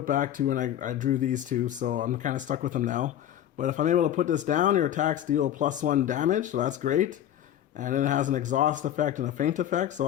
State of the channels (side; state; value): right; quieter; 11.2 dB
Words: back 2, and I drew these 2. So I'm kind of stuck with them now. But if I'm able to put this down, your attacks deal +1 damage, so that's great. And then it has an exhaust effect and a feint effect, so